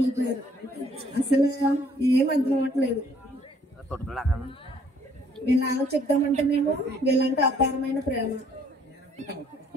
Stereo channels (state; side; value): normal; both; correlation 0.62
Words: అసలు ఏం అర్థం అవ్వట్లేదు. వీళ్ళ చెప్తామంటే మేము వీళ్ళంటే అపారమైన ప్రేమ.